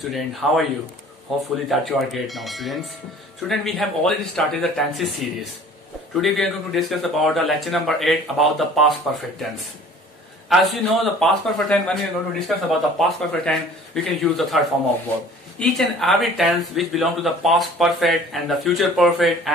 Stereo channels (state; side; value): normal; both; correlation 0.48